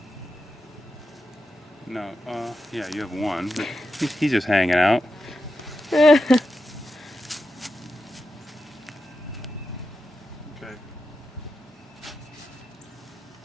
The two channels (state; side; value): normal; both; correlation 0.89